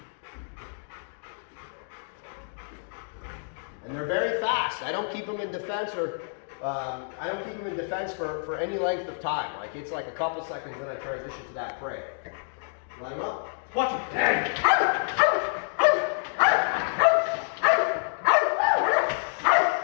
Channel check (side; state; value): right; silent; digital silence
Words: And And they're very fast. I don't keep them in defense or for any length of time. Like it's like a couple seconds, then I transition to that prey. Line them up. Watch it.